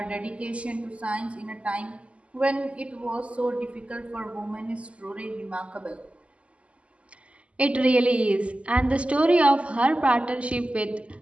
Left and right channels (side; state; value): left; late; 0.060 ms